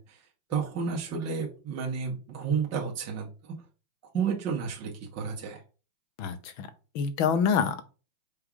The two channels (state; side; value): late; right; 6.2 ms